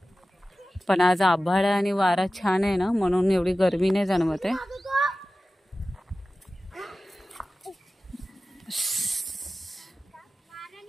पण आज आभाळ आणि वारा छान आहे ना, म्हणून एवढी गरमी नाही जाणवत आहे.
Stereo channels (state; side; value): normal; both; correlation 0.95